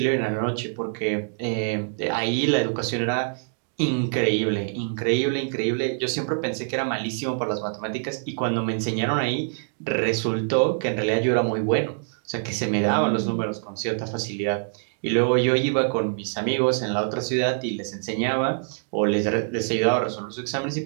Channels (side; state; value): left; silent; 62 dB below the other